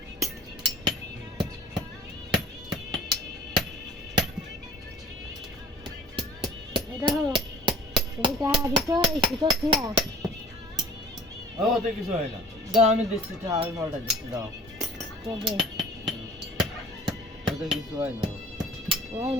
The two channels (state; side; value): normal; both; correlation 0.47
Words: দেখো তুমি টাকা দিছো এই সুতো ছিলা ও তো কিছু হয় না দাও আমি দিচ্ছি আমি পাল্টা দিচ্ছি দাও কবে ওটা কিছু হয় না ওই